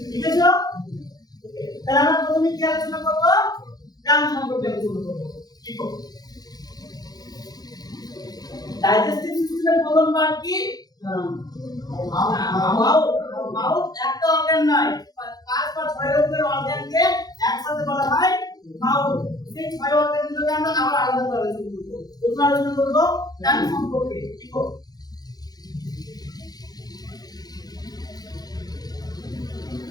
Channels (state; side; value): late; right; 0.19 ms